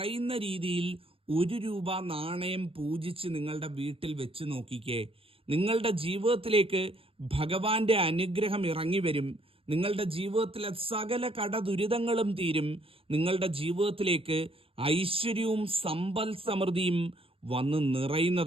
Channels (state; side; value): late; left; 0.27 ms